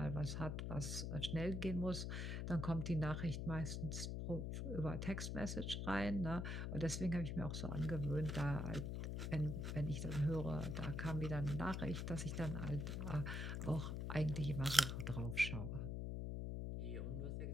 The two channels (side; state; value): left; noise; hum, 2 dB below the sound